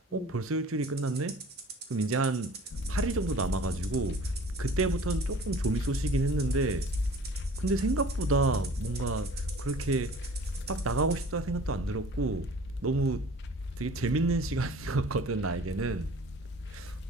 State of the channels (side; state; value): both; normal; correlation 0.46